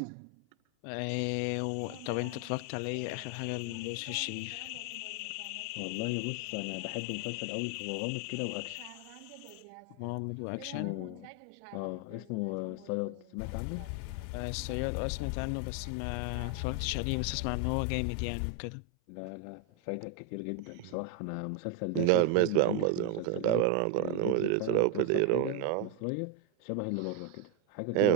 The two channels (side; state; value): both; different; correlation 0.01